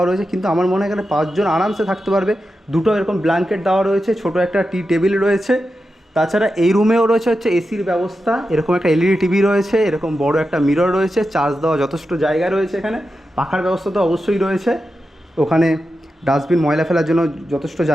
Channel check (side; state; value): both; normal; correlation 0.90